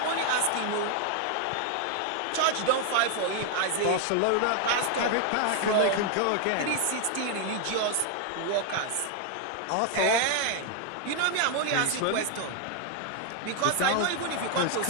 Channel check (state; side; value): different; both; correlation 0.00